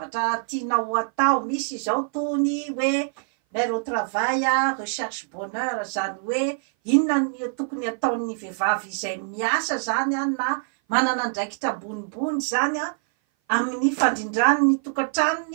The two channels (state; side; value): silent; left; 58 dB below the other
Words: tianao atao. Misy zao tony hoe mère au travail recherche bonheur, zany hoe inona ny tokony ataon'ny vehivavy izay miasa zany na manana andraikitra ambonimbony zany amin'ny fandrindrany ny